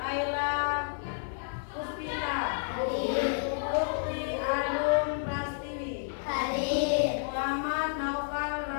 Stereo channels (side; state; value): right; silent; digital silence